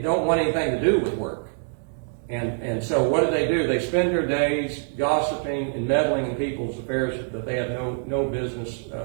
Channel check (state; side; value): silent; left; digital silence